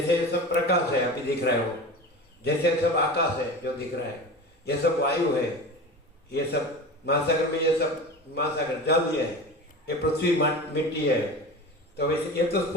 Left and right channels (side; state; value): both; normal; correlation 0.31